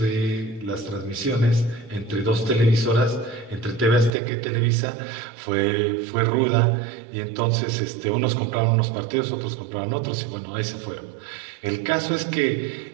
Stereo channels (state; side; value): drops out; left; at 4.1 s